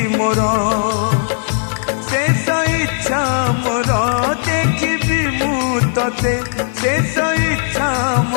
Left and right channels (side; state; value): right; silent; digital silence